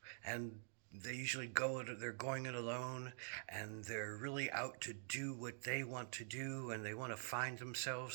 and they usually they're going it alone, and they're really out to do what they want to do, and they want to find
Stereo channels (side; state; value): left; silent; digital silence